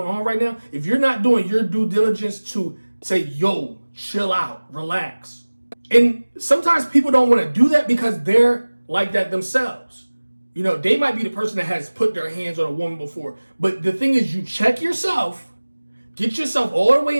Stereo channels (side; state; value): both; inverted; correlation -1.00